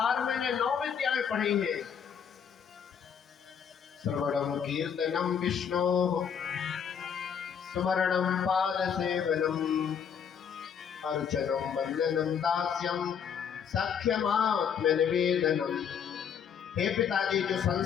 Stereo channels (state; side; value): quieter; right; 7.6 dB